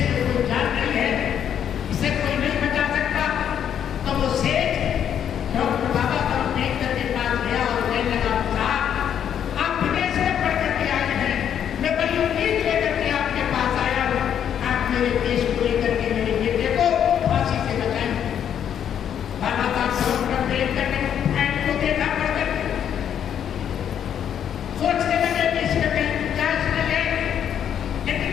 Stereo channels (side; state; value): right; quieter; 9.1 dB